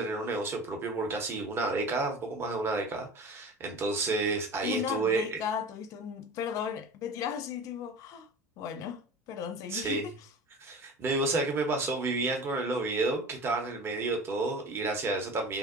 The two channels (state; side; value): normal; both; correlation 0.36